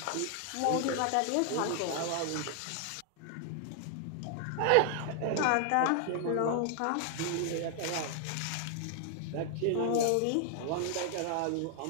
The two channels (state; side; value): different; both; correlation 0.00